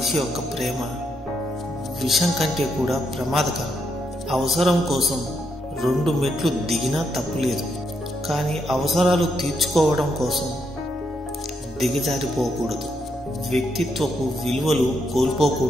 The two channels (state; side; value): normal; both; correlation 0.79